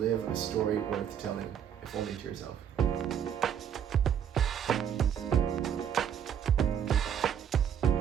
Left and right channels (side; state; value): left; quieter; 8.8 dB